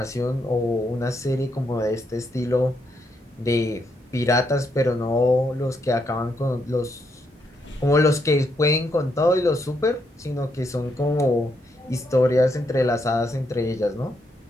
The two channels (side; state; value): both; normal; correlation 0.78